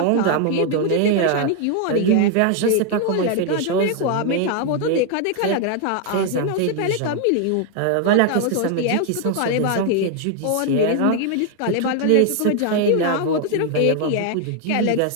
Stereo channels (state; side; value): different; both; correlation 0.00